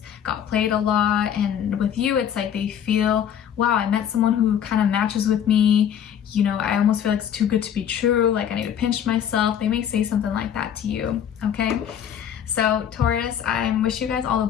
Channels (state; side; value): quieter; right; 9.1 dB